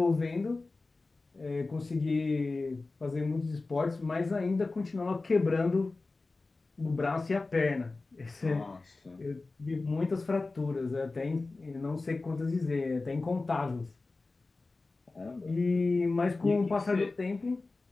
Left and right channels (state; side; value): quieter; right; 3.5 dB